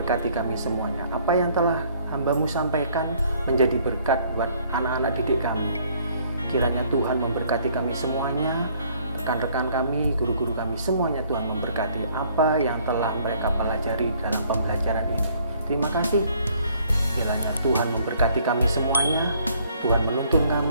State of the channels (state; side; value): inverted; both; correlation -0.62